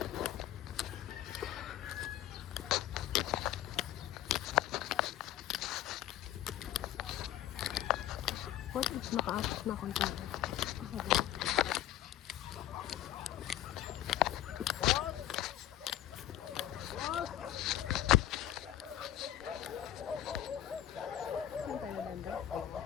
What if naka-apat na akong tayo? Ako ba? Saan tayo banda?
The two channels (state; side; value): quieter; right; 12.5 dB